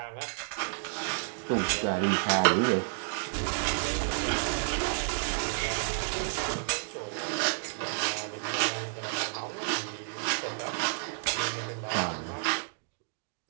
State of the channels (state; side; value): silent; left; digital silence